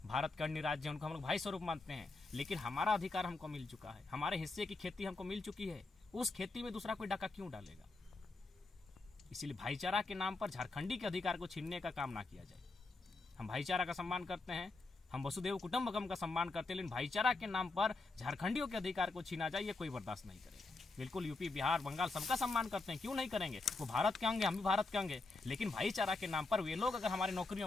भारत के अन्य राज्य हैं उनको हम लोग भाई स्वरूप मानते हैं। लेकिन हमारा अधिकार हमको मिल चुका है, हमारे हिस्से की खेती हमको मिल चुकी है, उस खेती में दूसरा कोई डाका क्यों डालेगा? इसीलिए भाईचारा के नाम पर झारखंडी के अधिकार को छीनने का काम ना किया जाए। हम भाईचारा का सम्मान करते हैं, हम वसुदेव कुटुंबकम का सम्मान करते हैं, लेकिन भाईचारा के नाम पर झारखंडियों के अधिकार को छीना जाए, ये कोई बर्दाश्त नहीं करेगा। बिल्कुल यूपी, बिहार, बंगाल सबका सम्मान करते हैं, क्यों नहीं करेंगे? वो भारत के होंगे, हम भी भारत के होंगे। लेकिन भाईचारा के नाम पर वे लोग अगर हमारी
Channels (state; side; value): quieter; right; 3.5 dB